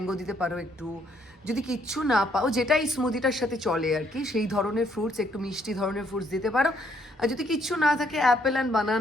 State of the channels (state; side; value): normal; both; correlation 0.69